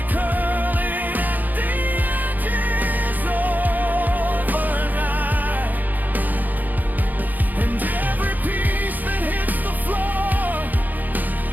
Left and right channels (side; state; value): left; late; 0.084 ms